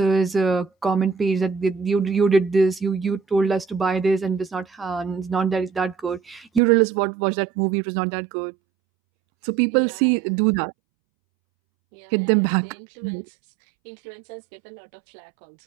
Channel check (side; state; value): left; drops out; at 6.6 s